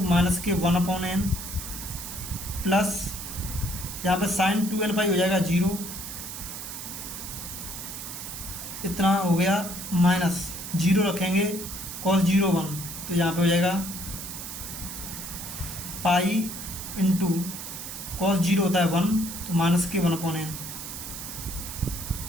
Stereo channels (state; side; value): noise; right; hiss, 8 dB below the sound